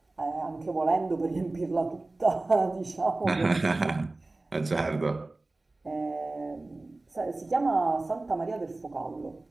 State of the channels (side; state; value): left; quieter; 3.1 dB